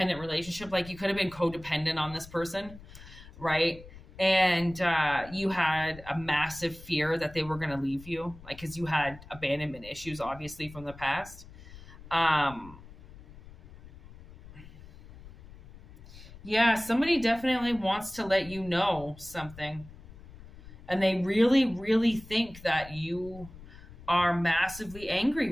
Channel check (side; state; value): left; noise; rumble, 18 dB below the sound